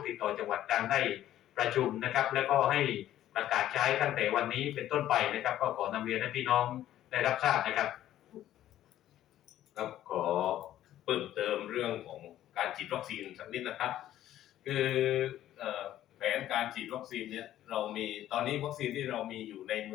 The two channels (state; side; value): quieter; right; 12.7 dB